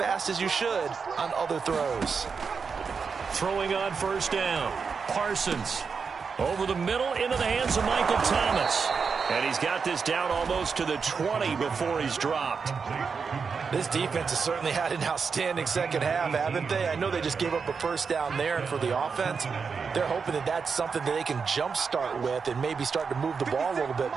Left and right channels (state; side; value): quieter; left; 5.5 dB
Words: as you should on other throws. Throwing on first down. Parsons over the middle into the hands of Michael Thomas. And he's got this down almost to the 20 before he's dropped. This defense has certainly had an outstanding second half, haven't they? I know they just gave up a first down there, and for the offense, they're hoping that that's something that they can jumpstart with and maybe start to move the ball a little bit